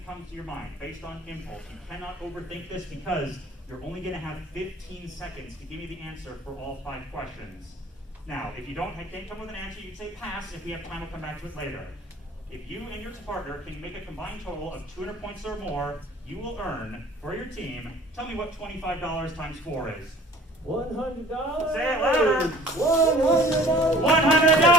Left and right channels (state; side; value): normal; both; correlation 0.50